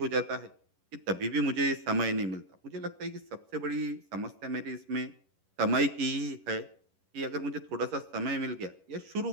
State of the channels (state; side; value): late; left; 11 ms